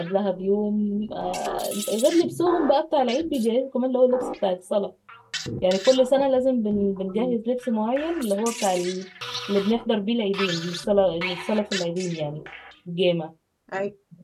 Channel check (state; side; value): identical; both; correlation 1.00